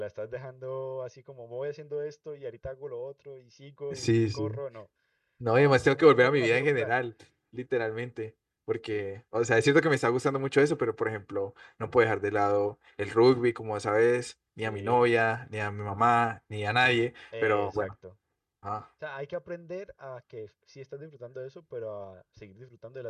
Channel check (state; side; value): identical; both; correlation 1.00